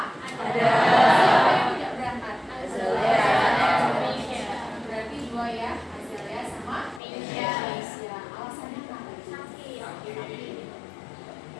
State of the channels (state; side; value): drops out; right; at 7.0 s